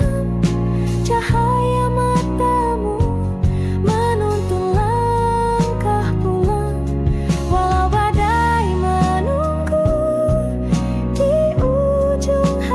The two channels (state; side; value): identical; both; correlation 1.00